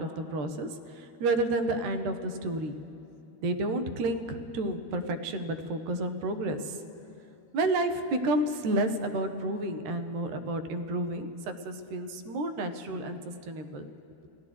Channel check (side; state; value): left; late; 13 ms